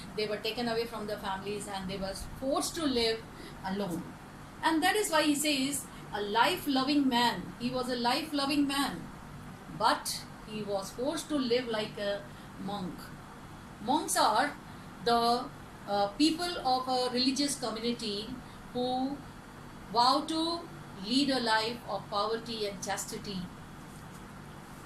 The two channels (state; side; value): identical; both; correlation 1.00